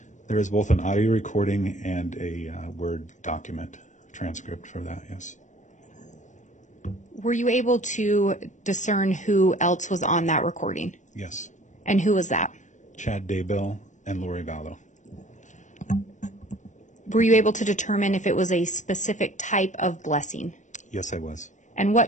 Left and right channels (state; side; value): late; right; 0.35 ms